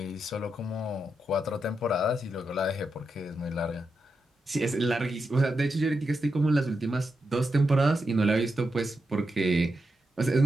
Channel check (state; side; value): normal; both; correlation 0.86